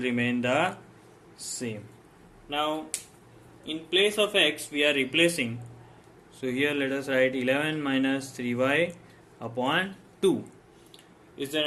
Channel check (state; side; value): identical; both; correlation 1.00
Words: remain the same. Now in place of x we are replacing, so here let us write 11 minus 3y upon 2. Is there